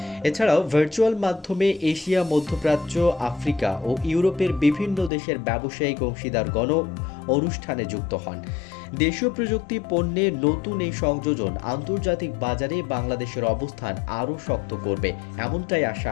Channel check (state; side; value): drops out; right; at 5.1 s